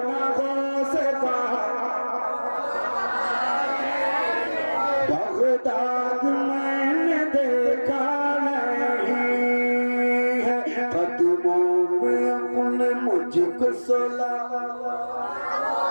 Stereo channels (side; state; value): both; inverted; correlation -1.00